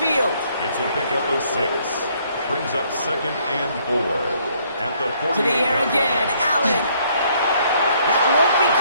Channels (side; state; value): both; inverted; correlation -0.66